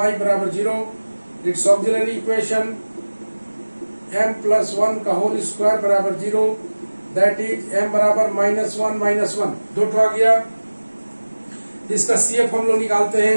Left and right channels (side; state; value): both; inverted; correlation -1.00